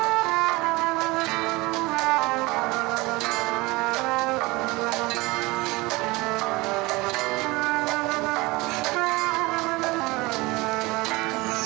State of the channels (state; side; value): quieter; left; 22.6 dB